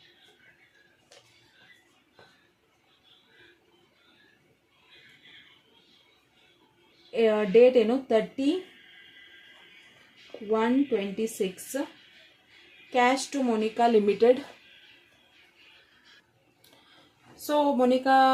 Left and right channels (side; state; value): both; identical; correlation 1.00